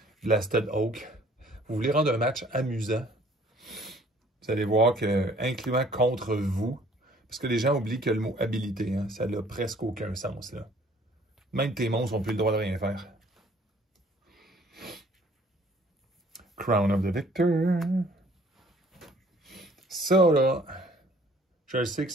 Blasted Oak. Vous voulez rendre un match amusant? Vous allez voir que, incluant contre vous, parce que les gens oublient que le mot habilité, hein, ça n'a presque aucun sens, là. Même tes monstres n'ont plus le droit de rien faire. Crown of the Victor. Ça, là, je sais que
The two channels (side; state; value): both; normal; correlation 0.57